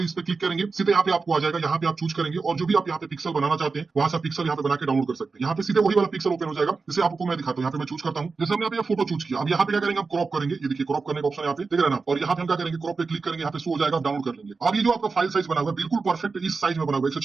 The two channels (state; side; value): quieter; left; 4.4 dB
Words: है, इस पे क्लिक करेंगे, सीधे यहाँ पे आपको आ जाएगा। यहाँ पे आप चूज करेंगे और जो भी आप यहाँ पे पिक्सल बनाना चाहते हैं वहां से पिक्सल यहाँ पे बना के डाउनलोड कर सकते हैं। यहाँ पे सीधे वही वाला पिक्सल ओपन हो जाएगा, जैसे आपको मैं दिखाता हूँ। यहाँ पे मैं चूज करता हूँ, जैसे हमने यहाँ पे फोटो चूज किया। अब यहाँ पे क्या करेंगे, हम क्रॉप करेंगे। ये देखिए क्रॉप करने का ऑप्शन यहाँ पे देख रहे हैं ना, और यहाँ पे हम क्या करेंगे, क्रॉप पे क्लिक करेंगे, यहाँ पे शो हो जाएगा, डाउनलोड कर लेंगे। अब ये जो आपका फाइल साइज बना हुआ है बिल्कुल परफेक्ट इस साइज में बना हुआ है,